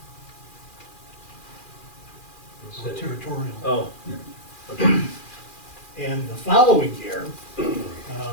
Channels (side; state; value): right; late; 2.4 ms